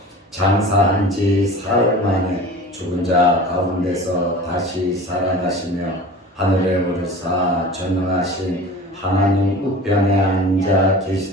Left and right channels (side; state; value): both; normal; correlation 0.38